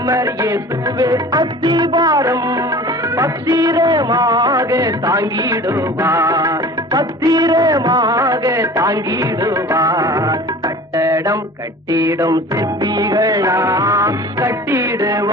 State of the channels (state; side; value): normal; both; correlation 0.42